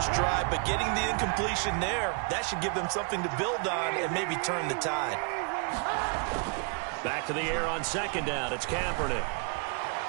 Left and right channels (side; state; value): left; quieter; 36.2 dB